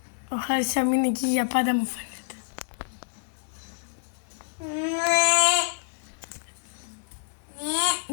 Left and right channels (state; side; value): silent; right; digital silence